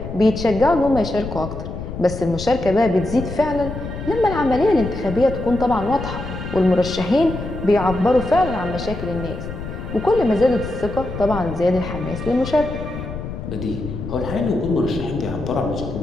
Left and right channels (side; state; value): left; noise; rumble, 8 dB below the sound